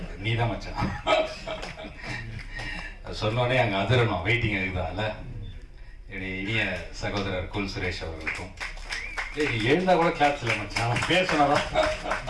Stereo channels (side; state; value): both; identical; correlation 1.00